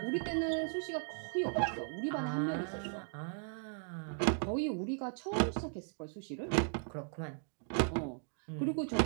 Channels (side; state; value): left; silent; 53 dB below the other